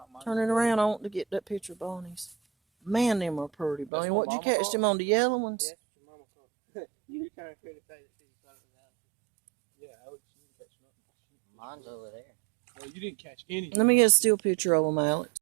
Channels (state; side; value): drops out; left; at 3.9 s